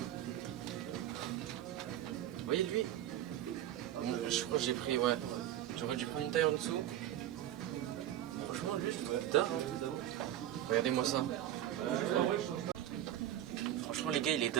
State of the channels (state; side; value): quieter; left; 12.3 dB